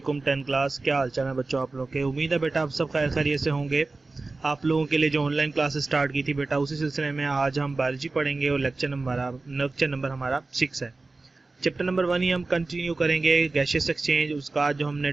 10 क्लास, क्या हाल चाल है बच्चों आप लोग के। उम्मीद है बेटा आप सब खैर खैरियत से होंगे। आप लोगों के लिए जो ऑनलाइन क्लासेस स्टार्ट की थी बेटा, उसी सिलसिले में आज हम बायोलॉजी पढ़ेंगे और लेक्चर नंबर हमारा 6 है। चैप्टर नंबर 1 ही हम कंटिन्यू करेंगे, गैसियस एक्सचेंज। उसका आज जो हमने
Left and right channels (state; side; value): quieter; left; 3.5 dB